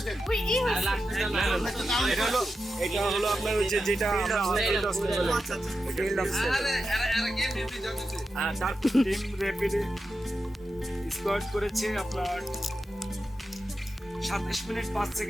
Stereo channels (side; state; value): both; normal; correlation 0.90